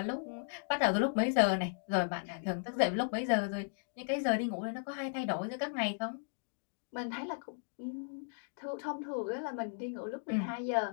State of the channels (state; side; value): silent; right; digital silence